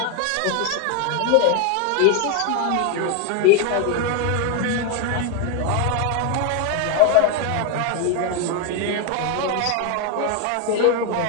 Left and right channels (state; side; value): different; both; correlation 0.01